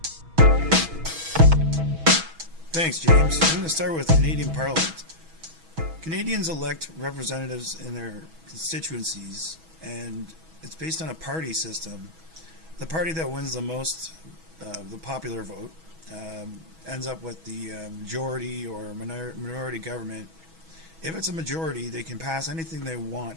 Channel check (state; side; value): late; left; 6.2 ms